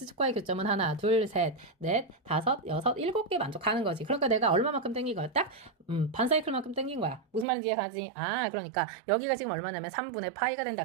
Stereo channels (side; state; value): left; drops out; at 7.5 s